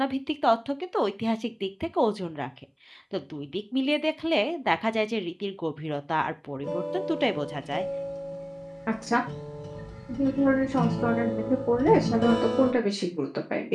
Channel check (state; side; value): identical; both; correlation 1.00